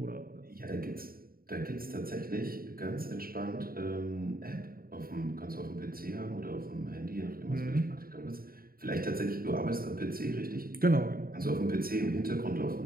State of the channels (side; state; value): left; late; 0.43 ms